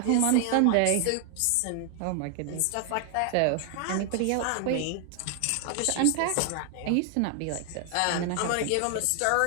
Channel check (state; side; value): different; both; correlation 0.00